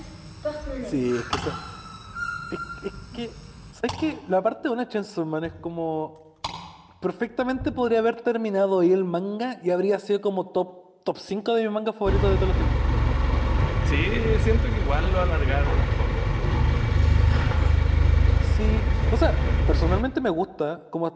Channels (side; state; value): both; identical; correlation 1.00